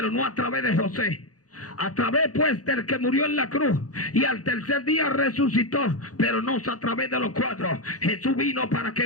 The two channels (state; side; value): late; right; 0.67 ms